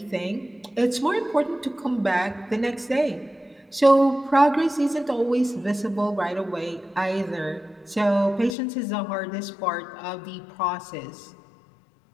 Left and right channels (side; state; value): right; drops out; at 8.6 s